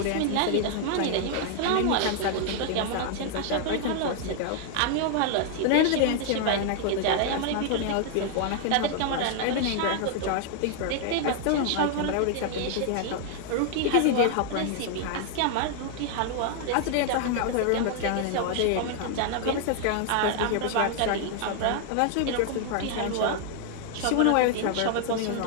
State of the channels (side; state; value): both; different; correlation 0.00